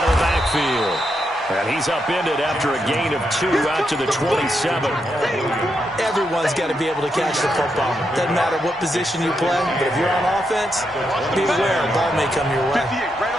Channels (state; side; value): normal; both; correlation 0.82